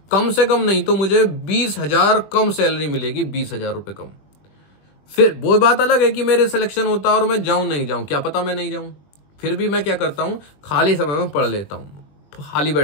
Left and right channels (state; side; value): late; right; 20 ms